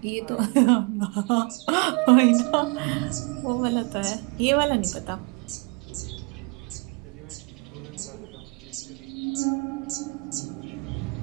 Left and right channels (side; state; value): left; quieter; 30.3 dB